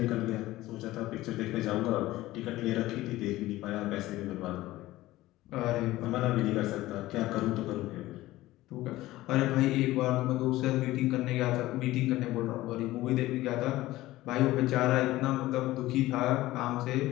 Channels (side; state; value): right; quieter; 16.9 dB